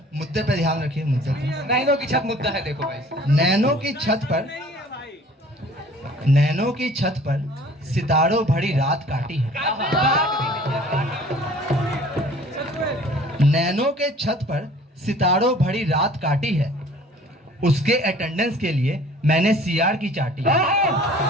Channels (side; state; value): both; normal; correlation 0.50